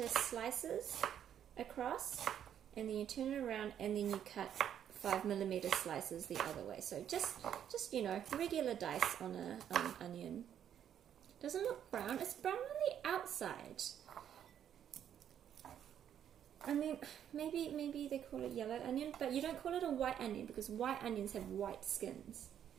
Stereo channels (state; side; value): quieter; left; 9.6 dB